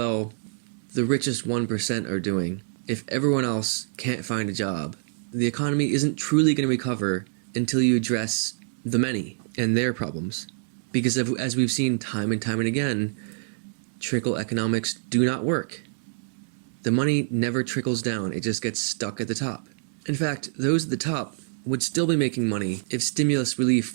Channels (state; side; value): silent; left; digital silence